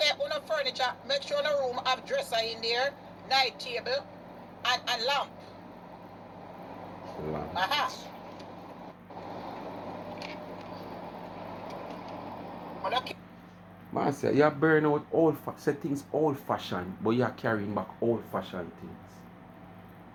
on the furniture, make sure the room have dresser in there, night table, and lamp. Aha. Man say you burn out say things old fashioned, but you're carrying back old fashioned things.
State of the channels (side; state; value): both; identical; correlation 1.00